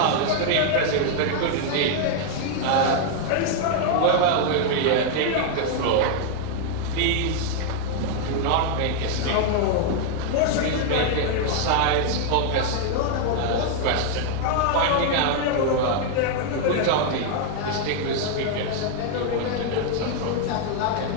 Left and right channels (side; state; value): both; different; correlation 0.00